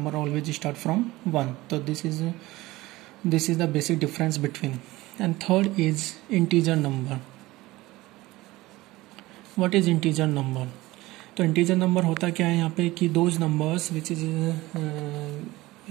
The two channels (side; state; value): left; quieter; 19.1 dB